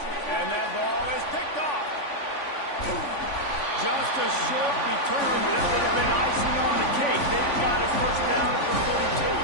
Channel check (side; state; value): right; late; 3.5 ms